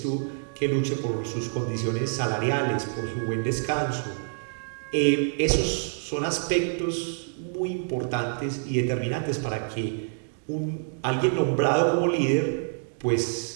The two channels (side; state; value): left; silent; digital silence